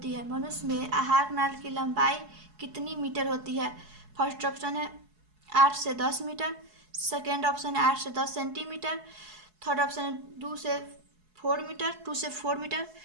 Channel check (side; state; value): left; late; 4.7 ms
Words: है? मनुष्य में आहार नाल की लंबाई कितनी मीटर होती है? फर्स्ट ऑप्शन है 8 से 10 मीटर, सेकेंड ऑप्शन है 8 से 10 सेंटीमीटर, थर्ड ऑप्शन है 2 से 4 मीटर,